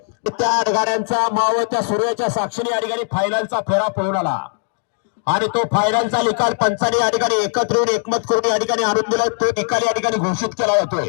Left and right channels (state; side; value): silent; right; 64 dB below the other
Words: त्या 8 गाड्यांचा मावळत्या सूर्याच्या साक्षीने या ठिकाणी फायनलचा फेरा पळून आला आणि तो फायनलचा निकाल पंचाने या ठिकाणी एकत्र येऊन एकमत करून या ठिकाणी आणून दिला. तो निकाल या ठिकाणी घोषित केला